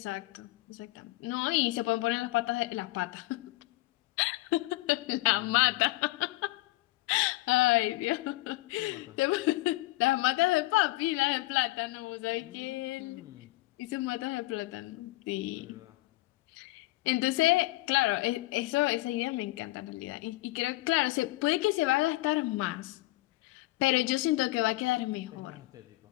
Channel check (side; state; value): right; quieter; 19.8 dB